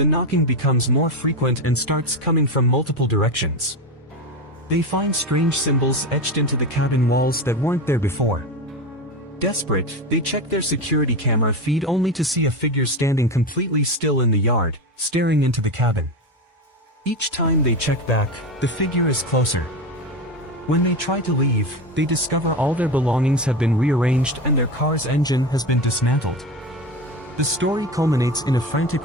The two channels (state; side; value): normal; both; correlation 0.20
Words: knocking becomes more frequent and starts coming from multiple directions. They find strange symbols etched into the cabin walls that weren't there before. Desperate, they check their security camera feed only to see a figure standing completely still in the yard, staring into the cabin. Each time they check back, the figure is closer. When they try to leave, they discover all their belongings have been rearranged and their car's engine has been dismantled. The story culminates in a